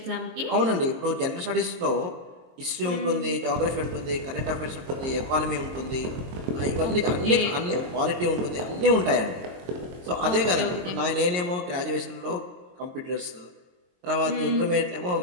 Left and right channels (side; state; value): left; late; 23 ms